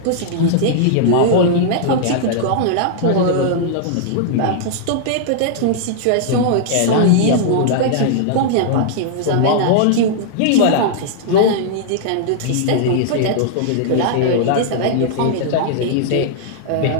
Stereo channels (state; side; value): different; both; correlation -0.01